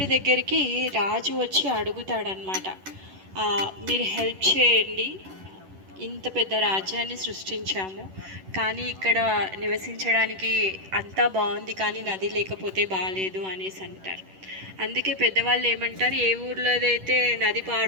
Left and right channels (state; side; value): late; left; 11 ms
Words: దగ్గరికి రాజు వచ్చి అడుగుతాడనమాట, మీరు హెల్ప్ చేయండి, ఇంత పెద్ద రాజ్యాన్ని సృష్టించాము, కానీ ఇక్కడ నివసించడానికి అంతా బాగుంది, కానీ నది లేకపోతే బాగాలేదు అనేసి అంటారు. అందుకే పెద్దవాళ్ళు ఏమంటారు, ఏ ఊర్లోదైతే నది